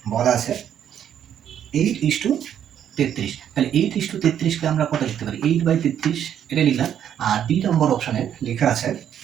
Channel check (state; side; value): quieter; left; 9.6 dB